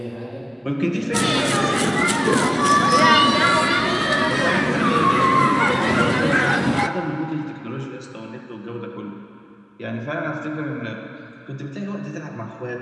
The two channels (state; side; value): identical; both; correlation 1.00